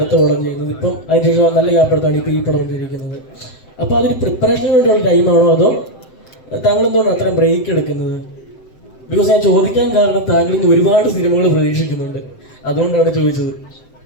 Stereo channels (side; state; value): right; late; 7.8 ms